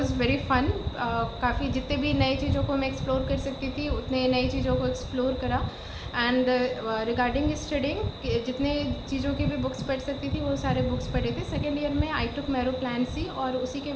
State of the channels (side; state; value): both; identical; correlation 1.00